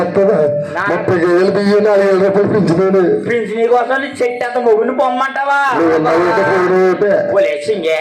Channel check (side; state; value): both; identical; correlation 1.00